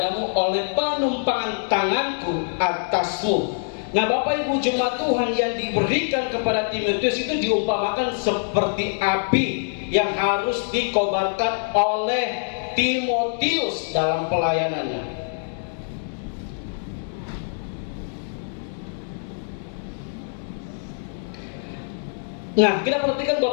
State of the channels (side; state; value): right; silent; digital silence